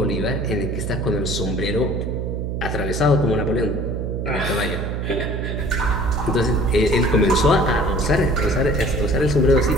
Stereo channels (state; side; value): noise; right; hum, 3 dB below the sound